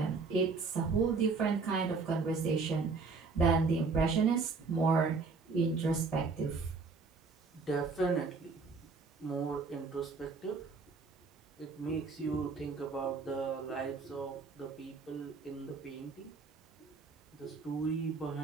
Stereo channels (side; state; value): left; quieter; 4.5 dB